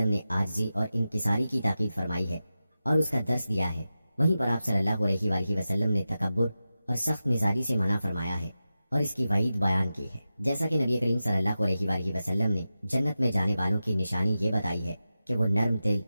نے عاجزی اور انکساری کی تاکید فرمائی ہے اور اس کا درس دیا ہے، وہیں پر آپ صلی اللہ علیہ وآلہ وسلم نے تکبر اور سخت مزاجی سے منع فرمایا ہے اور اس کی وعید بیان کی ہے۔ جیسا کہ نبی کریم صلی اللہ علیہ وآلہ وسلم نے جنت میں جانے والوں کی نشانی یہ بتائی ہے کہ وہ نرم دل،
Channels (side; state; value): both; inverted; correlation -0.92